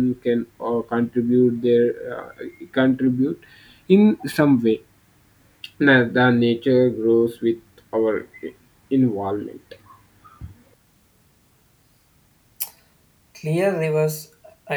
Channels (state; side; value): identical; both; correlation 1.00